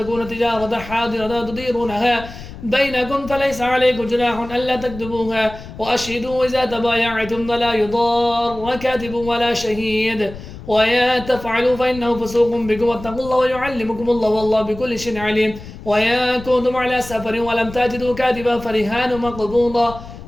تجارة حاضرة تديرونها بينكم فليس عليكم جناح ألا تكتبوها وأشهدوا إذا تبايعتم ولا يضار كاتب ولا شهيد ويا تفعلوا فإنه فسوق بكم واتقوا الله ويعلمكم الله والله بكل شيء عليم ويا كنتم على سفر ولم تجدوا كاتبا فرهان مقبوضا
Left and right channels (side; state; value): left; noise; rumble, 14 dB below the sound